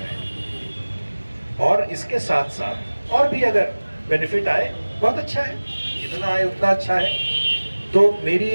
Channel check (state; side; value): inverted; both; correlation -1.00